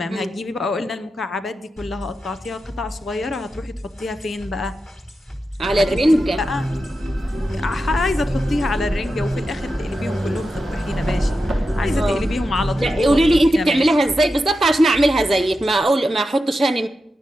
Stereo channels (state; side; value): normal; both; correlation 0.90